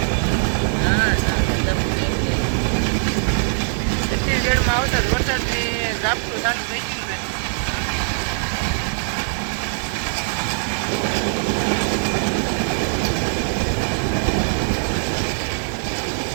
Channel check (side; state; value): left; silent; digital silence